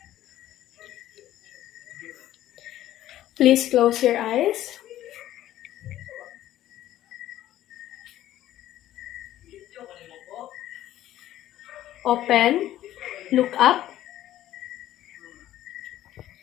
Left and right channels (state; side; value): quieter; right; 13.4 dB